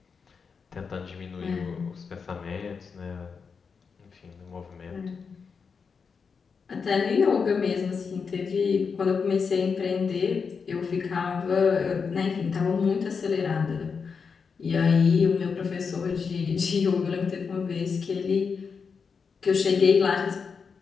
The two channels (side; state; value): right; quieter; 5.6 dB